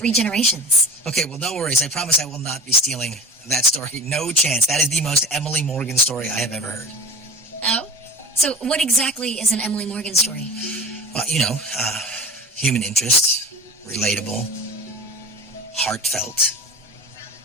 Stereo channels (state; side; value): normal; both; correlation 0.33